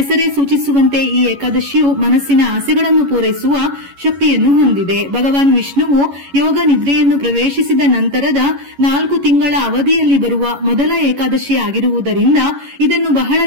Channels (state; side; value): late; left; 11 ms